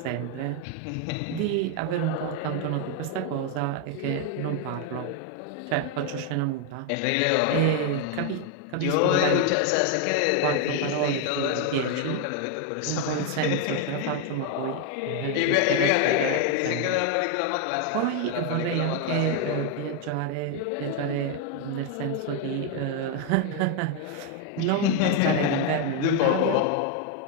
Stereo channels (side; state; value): both; different; correlation 0.01